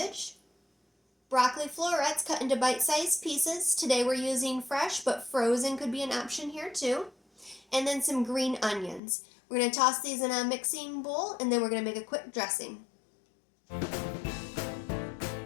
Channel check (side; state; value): right; drops out; at 9.0 s